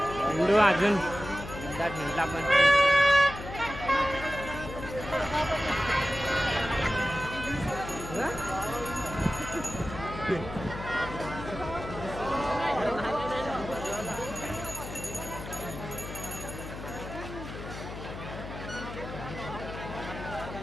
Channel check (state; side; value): noise; left; hum, 10 dB below the sound